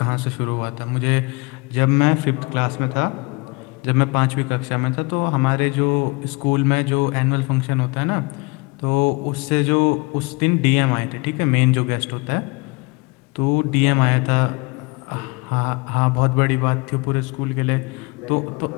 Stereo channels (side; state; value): right; quieter; 27.4 dB